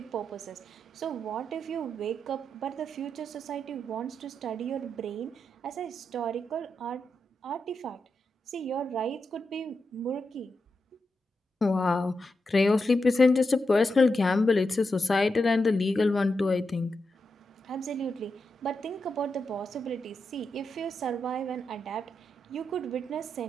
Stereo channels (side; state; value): both; normal; correlation 0.86